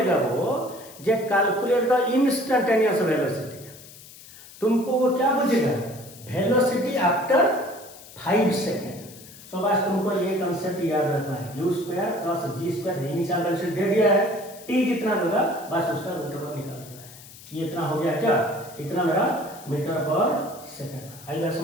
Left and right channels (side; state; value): left; noise; hiss, 19 dB below the sound